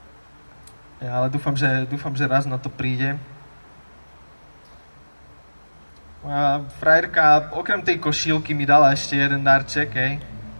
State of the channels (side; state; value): both; inverted; correlation -1.00